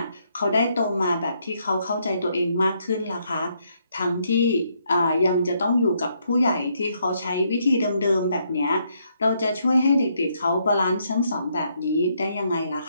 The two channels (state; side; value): inverted; both; correlation -0.74